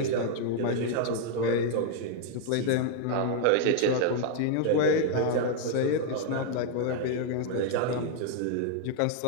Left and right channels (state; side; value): different; both; correlation 0.00